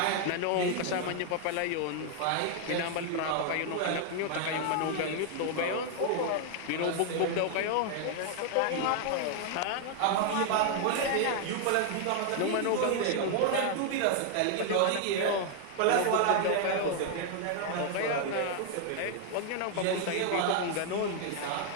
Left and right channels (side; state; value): both; different; correlation 0.00